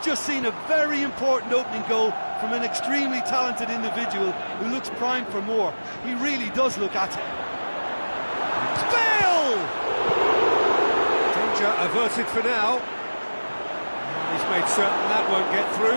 just seen a very important opening goal from an extremely talented individual who looks primed for more. He really does look at it. Bale! Danger averted for now. He's made certain that won't get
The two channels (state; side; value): inverted; both; correlation -1.00